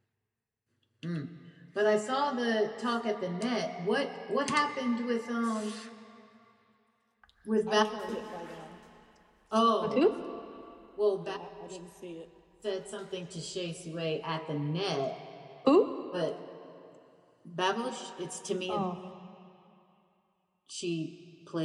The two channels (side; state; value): both; identical; correlation 1.00